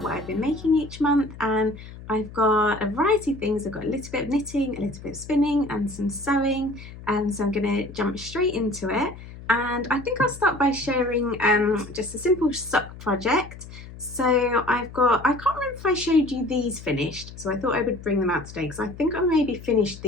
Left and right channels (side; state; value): left; noise; hum, 15 dB below the sound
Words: what I've been making each month, and I've got a variety of things. I've got a little bit of knitting, a little bit of spinning and some sewing, and so I'm going to jump straight into it. And I think I'll start by sharing just a simple sock project. So I can't remember if I showed you these finished, so I thought I would bring them out today because I think I maybe finished